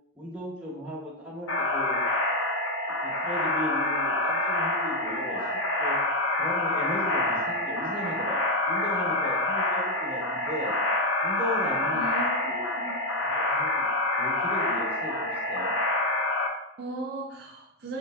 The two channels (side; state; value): both; normal; correlation 0.05